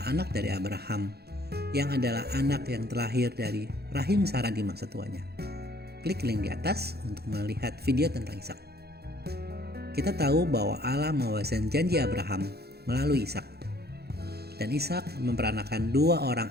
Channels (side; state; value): left; late; 0.47 ms